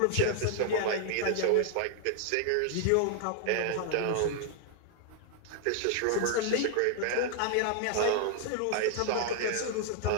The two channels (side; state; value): both; different; correlation 0.00